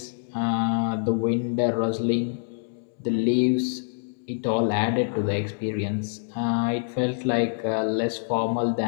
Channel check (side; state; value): right; silent; digital silence